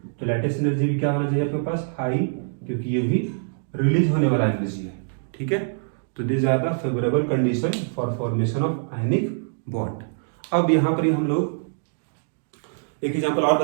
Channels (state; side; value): silent; left; digital silence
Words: तो लैटिस एनर्जी भी क्या होना चाहिए आपके पास, हाई, क्योंकि ये भी रिलीज होने वाला एनर्जी है। ठीक है। तो this are the favourable condition for formation of ionic bond. अब यहाँ पर हम लोग एक एग्जांपल और